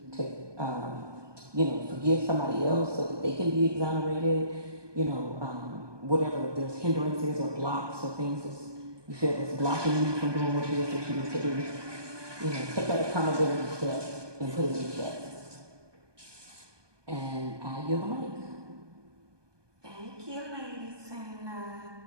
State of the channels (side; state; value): left; late; 1.2 ms